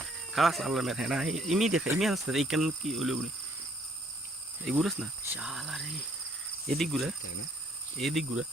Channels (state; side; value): normal; both; correlation 0.65